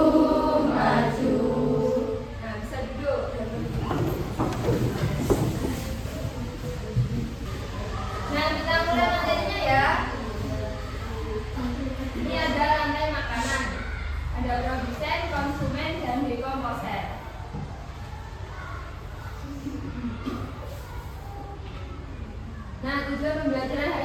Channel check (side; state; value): both; identical; correlation 1.00